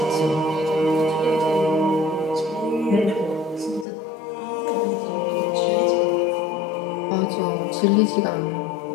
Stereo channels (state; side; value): drops out; right; at 3.9 s